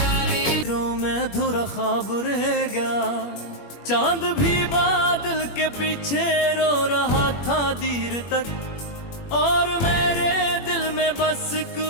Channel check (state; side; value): late; right; 21 ms